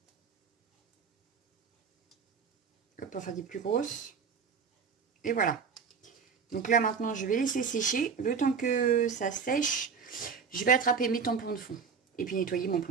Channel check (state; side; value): quieter; left; 6.0 dB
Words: Hop, enfin des plus grosses. Et voilà. Donc là, maintenant, je vais laisser sécher. Le temps que ça sèche, je vais attraper mes tampons de fond. Et puis nettoyer mon